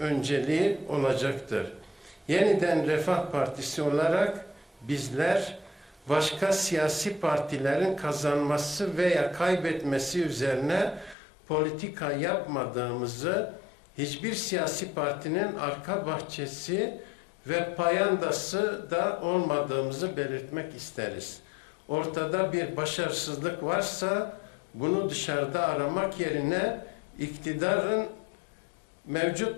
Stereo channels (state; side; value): drops out; right; at 11.2 s